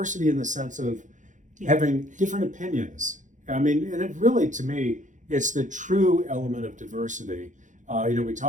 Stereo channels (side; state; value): left; late; 0.36 ms